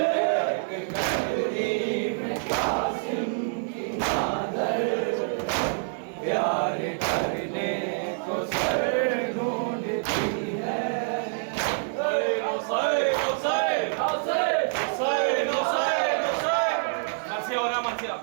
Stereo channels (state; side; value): silent; left; 59 dB below the other